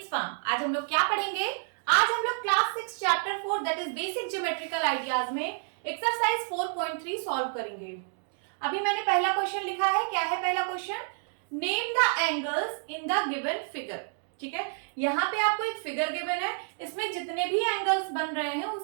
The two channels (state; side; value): silent; left; 58 dB below the other